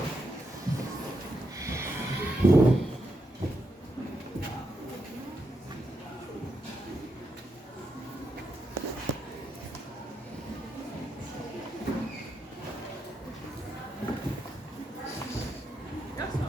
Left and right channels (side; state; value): both; normal; correlation 0.83